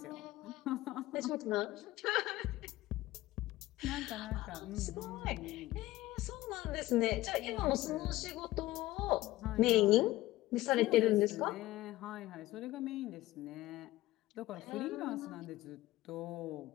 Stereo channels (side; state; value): right; quieter; 17.1 dB